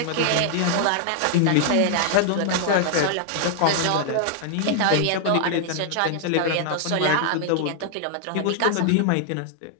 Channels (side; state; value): both; different; correlation 0.00